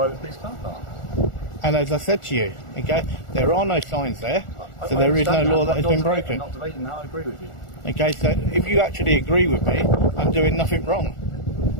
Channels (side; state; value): right; late; 1.4 ms